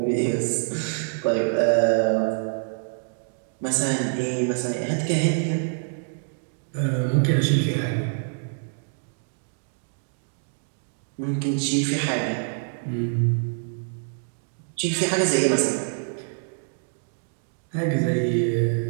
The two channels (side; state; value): left; silent; digital silence